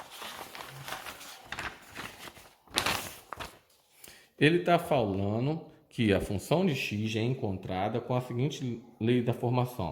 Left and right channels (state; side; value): identical; both; correlation 1.00